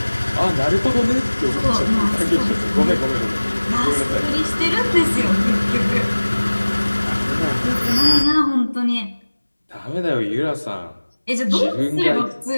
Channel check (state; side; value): inverted; both; correlation -1.00